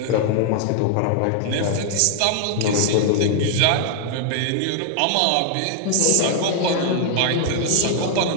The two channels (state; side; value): different; both; correlation 0.00